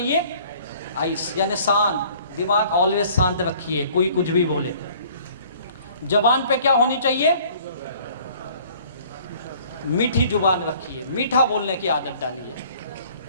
आइस, यानी शांत दिमाग। ऑलवेज शांत रखिए, कोई कुछ भी बोले। जबान पे क्या होनी चाहिए? मीठी जुबान रखिए, मीठा बोलने की आदत डालिए।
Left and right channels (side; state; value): both; inverted; correlation -0.54